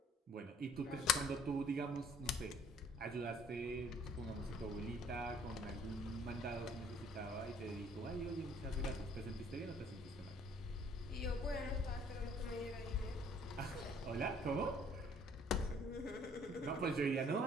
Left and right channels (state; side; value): normal; both; correlation 0.58